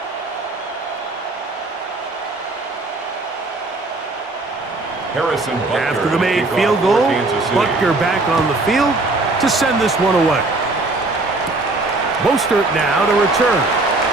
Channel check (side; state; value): left; quieter; 3.1 dB